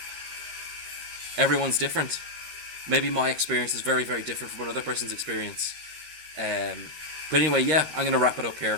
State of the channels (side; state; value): left; late; 13 ms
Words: everyone's different. Maybe my experience is very, very different from another person's experience. But anyway, yeah, I'm going to wrap it up